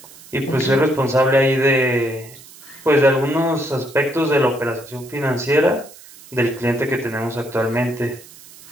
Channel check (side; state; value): right; noise; hiss, 21 dB below the sound